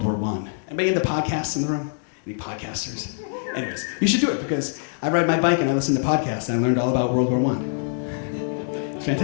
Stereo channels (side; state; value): right; silent; digital silence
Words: War I. Anybody into podcasts in the room? Any podcasters? Anyways, you should do it because I ride my bike and I listen to podcasts and I learned all about World War I. It's